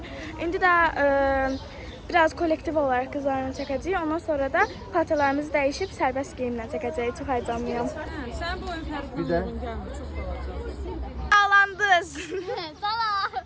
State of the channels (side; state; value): both; identical; correlation 1.00